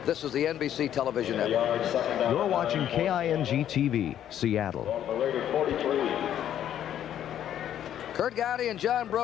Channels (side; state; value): right; quieter; 10.6 dB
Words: This is the NBC television network. You're watching KING TV, Seattle. Kurt Gowdy and John